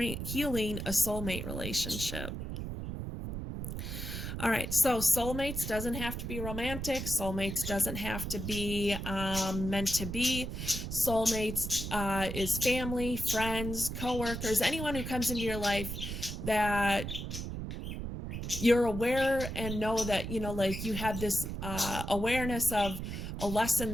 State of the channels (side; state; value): right; noise; rumble, 5 dB below the sound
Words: a soulmate relationship. All right, so soulmates doesn't have to be romantic. Soulmates doesn't have to be meant to be. Soulmates is family, friends, coworkers, anyone who comes into your life that you're aware and know that, you have this awareness of a lesson